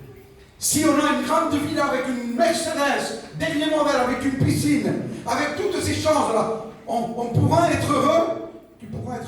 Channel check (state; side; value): identical; both; correlation 1.00